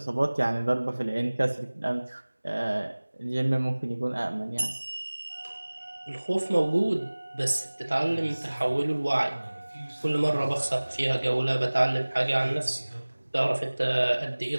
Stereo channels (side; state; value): both; inverted; correlation -1.00